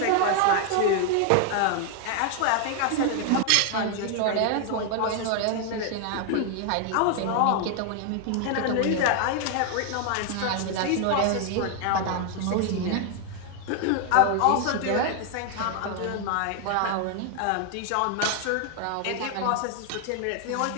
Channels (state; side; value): different; both; correlation 0.00